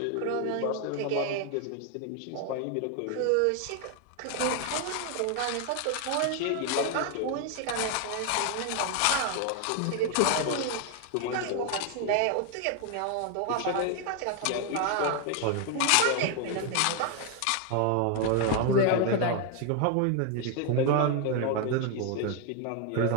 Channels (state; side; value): different; both; correlation 0.01